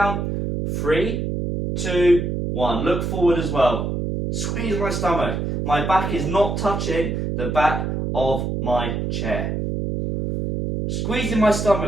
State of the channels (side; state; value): right; noise; hum, 2 dB below the sound